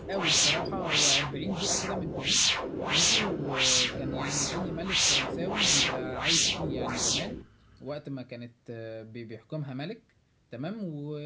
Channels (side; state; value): both; identical; correlation 1.00